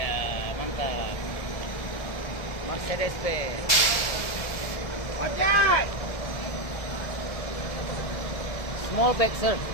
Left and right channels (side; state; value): right; late; 1.7 ms